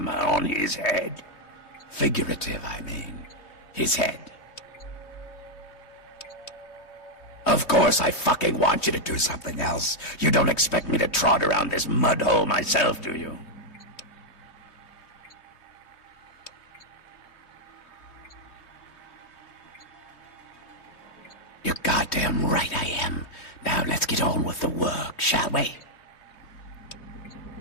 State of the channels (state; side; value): late; right; 3.1 ms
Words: on his head. Figurative, I mean. His head. Of course I fucking want you to do something else. You don't expect me to trot around this mud hole myself, do you? You're goddamn right I am. Now let's get on with the work, shall we?